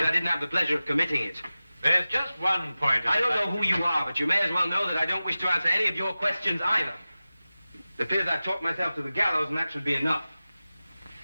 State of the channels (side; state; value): both; inverted; correlation -0.95